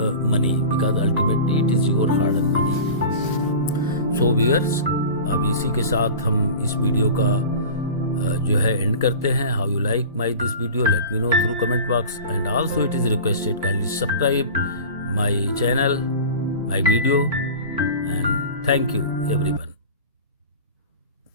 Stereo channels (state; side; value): inverted; both; correlation -0.35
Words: money, because ultimately it is your hard earned money. So viewers, अब इसी के साथ हम इस video का जो है and करते हैं. How you like my this video, let me know through comment box, and also it is requested kindly subscribe my channel, my video, and thank you everyone.